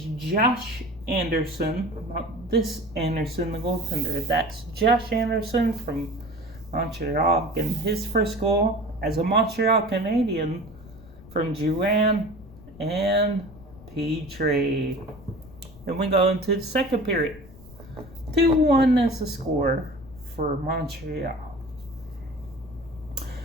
Josh Anderson, not this Anderson, the goaltender. That's Josh Anderson from Montreal getting his first goal as a Montreal Canadian from Drouin and Petrie. Then we go into the second period. 2-1 is the score for Montreal.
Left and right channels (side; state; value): left; noise; rumble, 20 dB below the sound